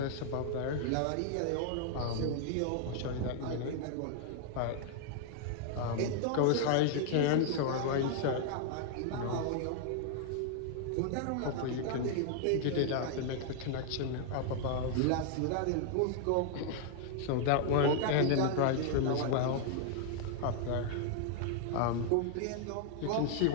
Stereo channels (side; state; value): both; different; correlation 0.00